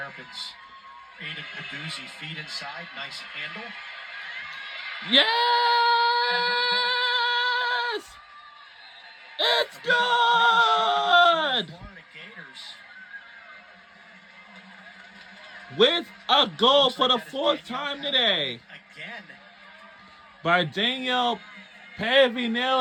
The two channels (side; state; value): both; identical; correlation 1.00